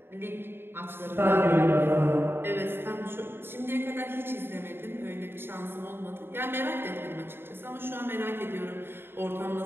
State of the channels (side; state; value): left; late; 0.11 ms